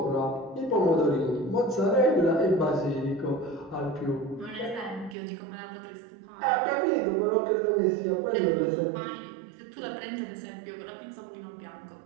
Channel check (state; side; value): drops out; left; at 5.2 s